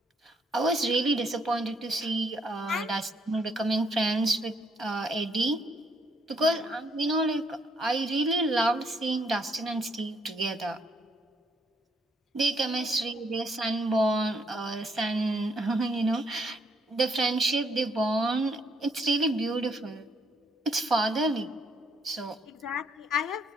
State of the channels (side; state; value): both; normal; correlation 0.70